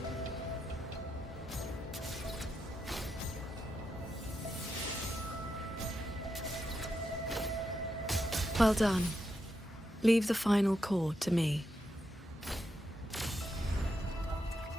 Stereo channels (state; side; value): normal; both; correlation 0.84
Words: Well done. Leave the final core to me.